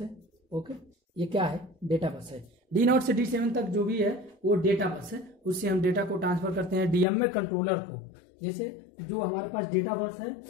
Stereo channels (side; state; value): right; drops out; at 7.1 s